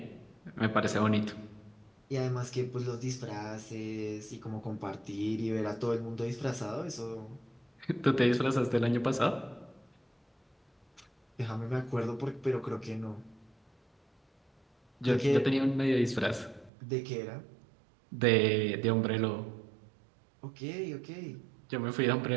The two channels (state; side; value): drops out; left; at 16.7 s